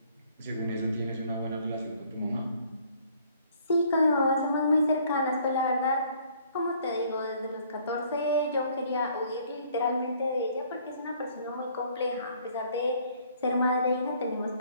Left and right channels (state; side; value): inverted; both; correlation -0.60